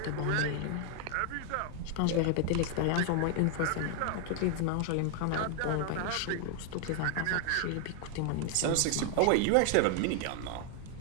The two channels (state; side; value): different; both; correlation 0.00